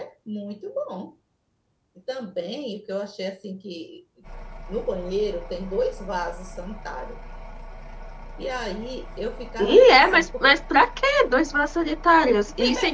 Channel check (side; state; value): both; identical; correlation 1.00